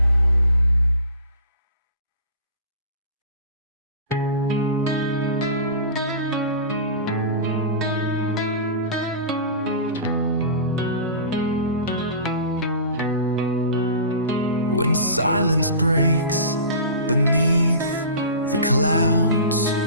When silence breaks beneath the clouds,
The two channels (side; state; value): both; inverted; correlation -0.37